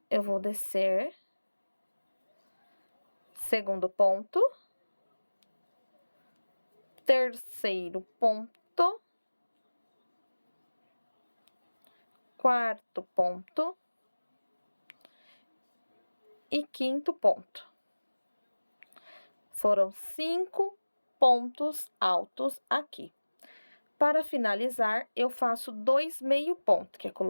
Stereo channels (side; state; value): both; inverted; correlation -1.00